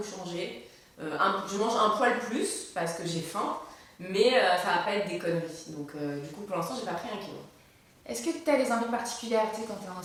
changé. Je mange un poil plus parce que j'ai faim. Mais ça va pas être des conneries. Donc du coup pour l'instant j'ai pas pris 1 kilo. Est-ce que tu as des envies particulières? Tu sais, quand tu es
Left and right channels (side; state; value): both; identical; correlation 1.00